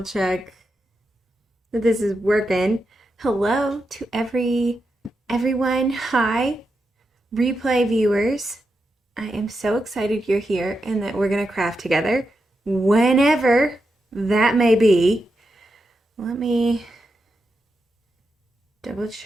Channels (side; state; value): both; normal; correlation 0.87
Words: check that this is working. Hello to everyone. Hi, replay viewers. I am so excited you're here and that we're going to craft together whenever that may be. Let me double